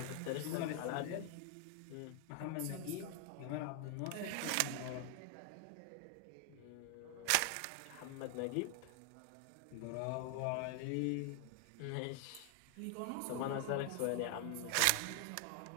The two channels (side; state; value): both; different; correlation 0.00